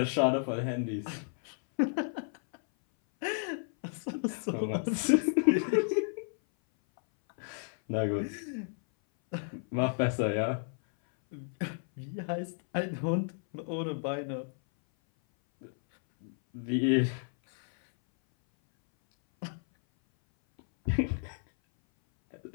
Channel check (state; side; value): silent; right; 56 dB below the other